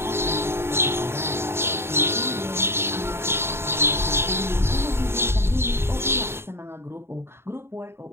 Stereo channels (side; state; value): left; late; 0.12 ms